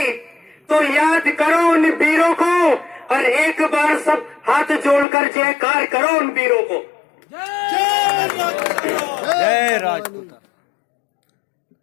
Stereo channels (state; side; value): drops out; right; at 5.1 s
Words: तो याद करो उन वीरों को, और एक बार सब हाथ जोड़कर जयकार करो उन वीरों को। जय राजपूत।